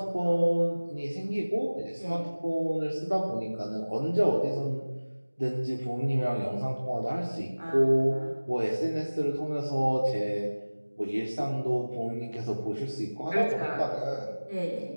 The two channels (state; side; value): inverted; both; correlation -1.00